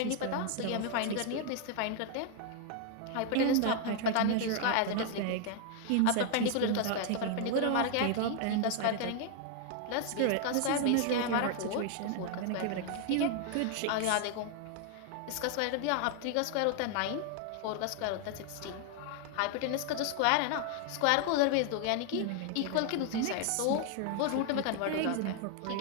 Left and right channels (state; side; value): different; both; correlation 0.00